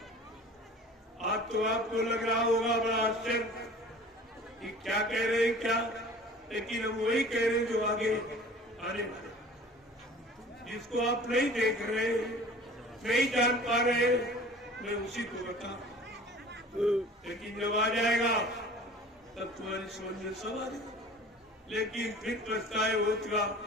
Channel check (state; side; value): normal; both; correlation 0.45